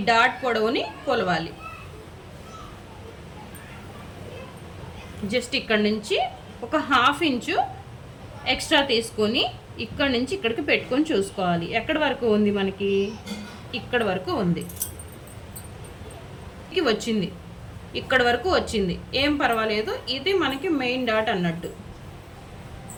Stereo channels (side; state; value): both; identical; correlation 1.00